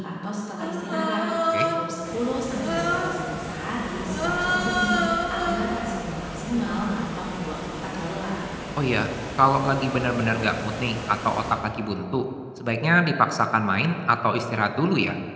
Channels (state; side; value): identical; both; correlation 1.00